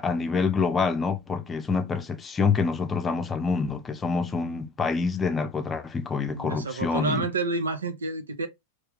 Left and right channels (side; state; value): right; quieter; 3.4 dB